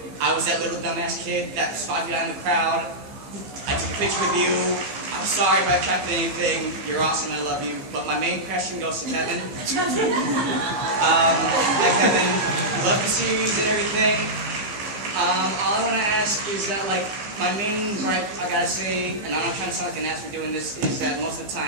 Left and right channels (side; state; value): left; late; 15 ms